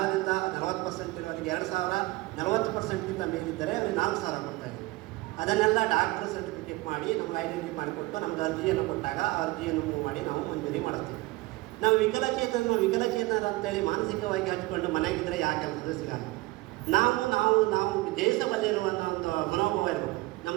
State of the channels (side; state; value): left; quieter; 20.7 dB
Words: 40% ಇರೋರಿಗೆ 2000, 40%ಗಿಂತ ಮೇಲಿದ್ದರೆ ಅವರಿಗೆ 4000 ಕೊಡ್ತಾ ಇದ್ದೀವಿ. ಅದನ್ನೆಲ್ಲ ಡಾಕ್ಟರ್ ಸರ್ಟಿಫಿಕೇಟ್ ಮಾಡಿ ನಮ್ಗೆ ಐಡೆಂಟಿಫೈ ಮಾಡಿಕೊಟ್ಟು ನಮ್ಗೆ ಅರ್ಜಿಯನ್ನು ಕೊಟ್ಟಾಗ ಆ ಅರ್ಜಿಯನ್ನು ಮೂವ್ ಮಾಡಿ ನಾವು ಮಂಜೂರಿ ಮಾಡಿಸ್ತೀವಿ. ನಾವು ವಿಕಲಚೇತನರು ಅಂತೇಳಿ ಮಾನಸಿಕವಾಗಿ ಹಚ್ಕೊಂಡು ಮನೆಗಿದ್ದರೆ ಯಾಕೆ ಕೆಲಸದ ಸಿಗಲ್ಲ. ನಾವು ದೇಶದಲ್ಲಿರುವ ಒಂದು ಮನೋಭಾವ ಇರಬೇಕು.